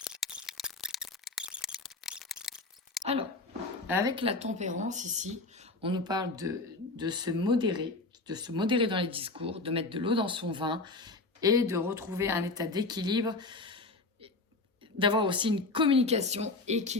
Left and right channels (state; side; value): quieter; right; 3.4 dB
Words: Alors, avec la tempérance ici, on nous parle de se modérer dans les discours, de mettre de l'eau dans son vin et de retrouver un état d'équilibre, d'avoir aussi une communication